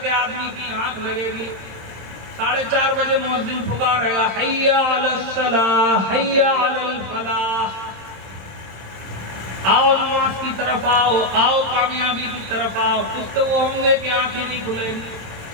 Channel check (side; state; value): left; late; 27 ms